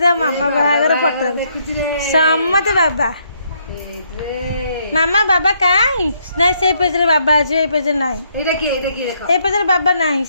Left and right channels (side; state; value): both; inverted; correlation -0.72